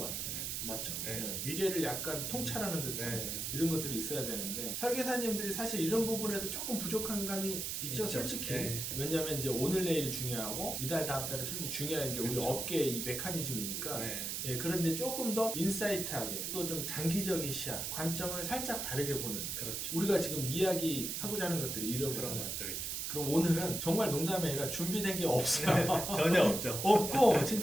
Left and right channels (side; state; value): right; noise; hiss, 3 dB below the sound